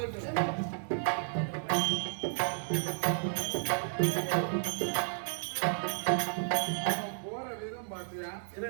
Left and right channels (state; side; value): silent; left; 56 dB below the other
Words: போற விதம் பாத்தியா?